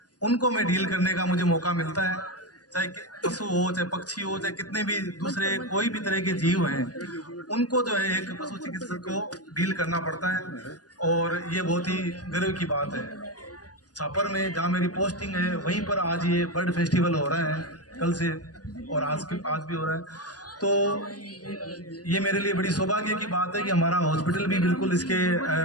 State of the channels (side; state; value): right; late; 0.68 ms